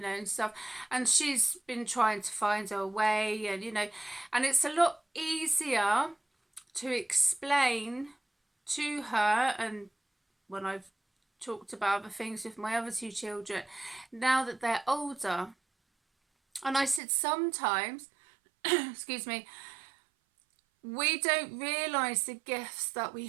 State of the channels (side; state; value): left; drops out; at 17.0 s